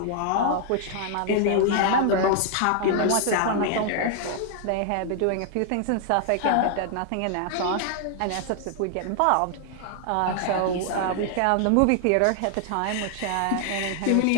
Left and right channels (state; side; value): different; both; correlation 0.00